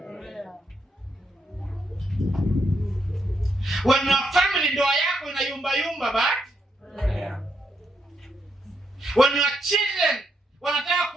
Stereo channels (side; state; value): both; normal; correlation 0.79